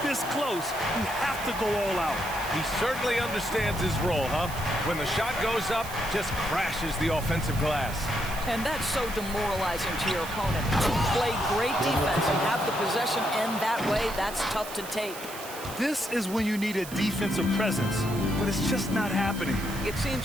this close, you have to go all out. He certainly understands his role, huh? When the shot goes up, just crashes the offensive glass. And that's so demoralizing to your opponent. To play great defense and have the possession end that way, that's tough to take. This is when you need a defensive presence, but it's just not happening. It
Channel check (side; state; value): right; noise; hiss, 12 dB below the sound